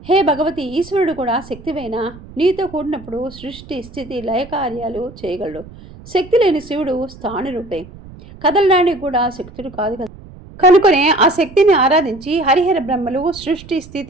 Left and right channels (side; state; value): right; noise; rumble, 18 dB below the sound